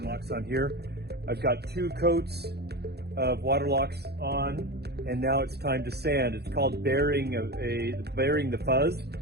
locks on here. I've got 2 coats of water locks on, and now it's time to sand. It's called burying the fuzz.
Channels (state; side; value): late; left; 0.48 ms